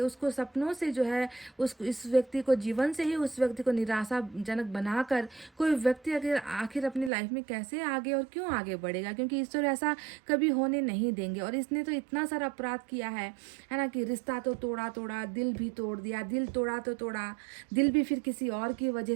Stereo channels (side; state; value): left; drops out; at 7.1 s